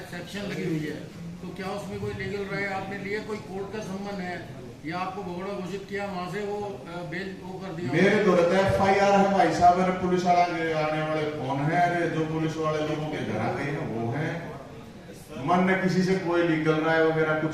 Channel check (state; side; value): identical; both; correlation 1.00